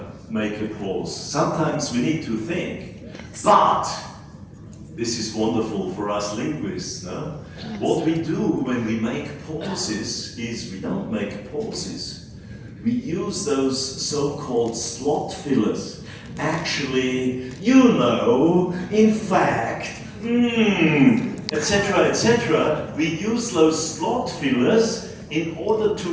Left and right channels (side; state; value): both; identical; correlation 1.00